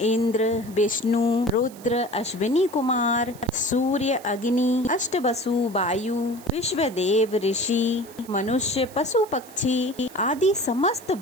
विष्णु, रुद्र, अश्विनी कुमार, सूर्य, अग्नि, अष्टवसु, वायु, विश्वदेव, ऋषि, मनुष्य, पशु, पक्षी आदि समस्त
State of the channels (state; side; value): noise; right; hiss, 21 dB below the sound